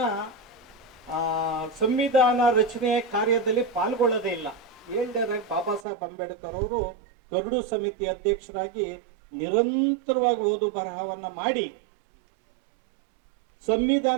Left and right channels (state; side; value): drops out; left; at 5.9 s